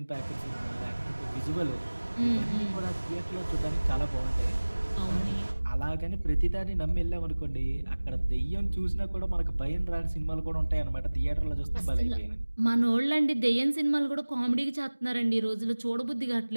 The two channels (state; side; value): inverted; both; correlation -1.00